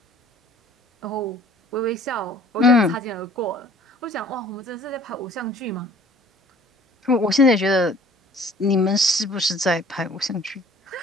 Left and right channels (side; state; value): both; normal; correlation 0.52